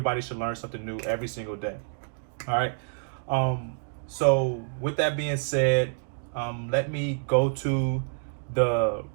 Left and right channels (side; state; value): left; silent; digital silence